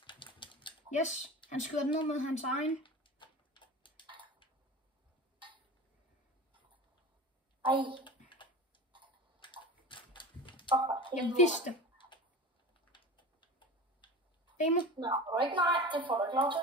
Yes, han skyder den ned med hans egen. Ej. Jeg vidste. Demo. Nå, ikke nej. Det får du ikke lov til.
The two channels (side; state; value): both; normal; correlation 0.33